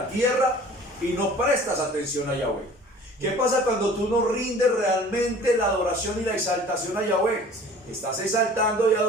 tierra y no prestas atención a Yahweh? ¿Qué pasa cuando tú no rindes realmente la adoración y la exaltación a Yahweh? Estás exaltando y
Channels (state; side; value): normal; both; correlation 0.47